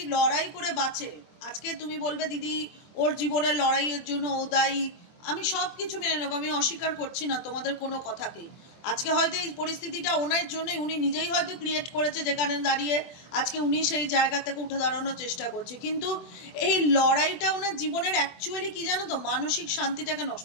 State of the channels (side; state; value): right; late; 24 ms